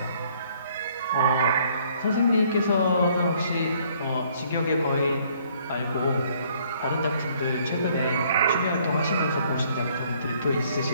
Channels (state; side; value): inverted; both; correlation -0.62